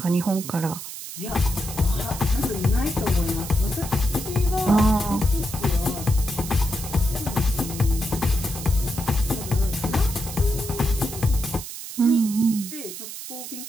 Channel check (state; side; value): noise; right; hiss, 10 dB below the sound